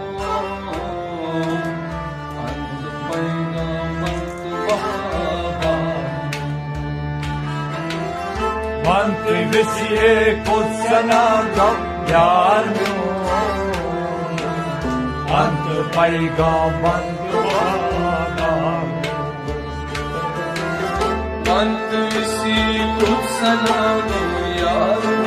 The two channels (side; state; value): both; identical; correlation 1.00